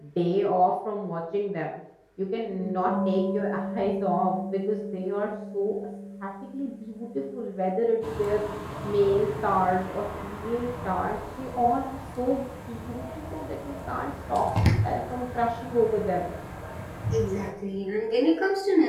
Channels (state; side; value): identical; both; correlation 1.00